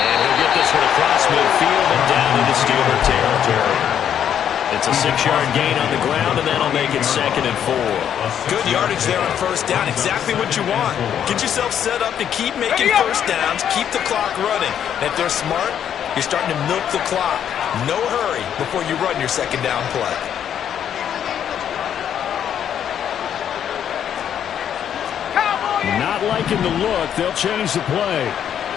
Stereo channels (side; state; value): right; quieter; 9.3 dB